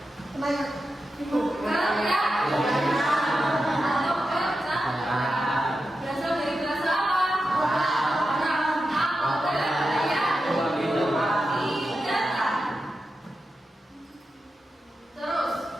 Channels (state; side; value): normal; both; correlation 0.90